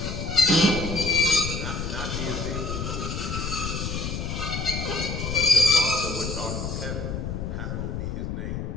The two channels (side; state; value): left; noise; rumble, 4 dB below the sound